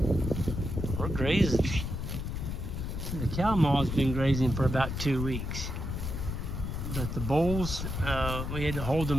We're grazing. The cow maw's been grazing for about 2 weeks. But the bulls, we had to hold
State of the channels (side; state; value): left; noise; rumble, 4 dB below the sound